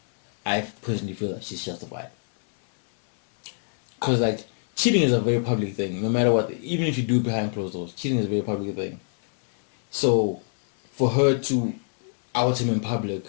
I personally feel that she's justified. Because like cheating is a very public thing. No matter what, even if you do it behind closed doors, cheating is a very public thing. So, for her to out him in public,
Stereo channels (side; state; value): right; silent; 61 dB below the other